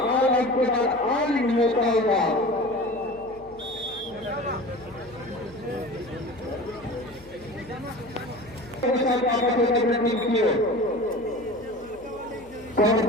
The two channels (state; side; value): noise; left; hum, 23 dB below the sound